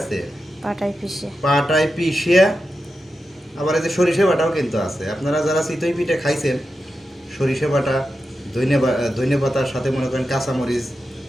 পাটায় পিষিয়া আবার এই যে সরিষা বাটাও কিন্তু আছে। আপনারা যারা চিতই পিঠা খাইছেন সরিষা বাটা ধনিয়া পাতার সাথে মনে করেন কাঁচামরিচ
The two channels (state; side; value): normal; both; correlation 0.90